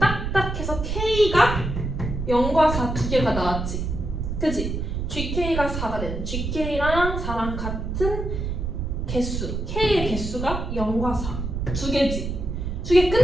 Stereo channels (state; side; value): noise; right; rumble, 3 dB below the sound